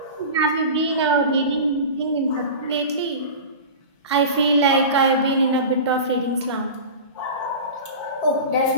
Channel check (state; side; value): inverted; both; correlation -0.31